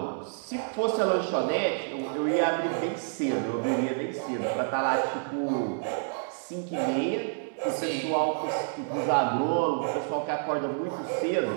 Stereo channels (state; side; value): silent; left; digital silence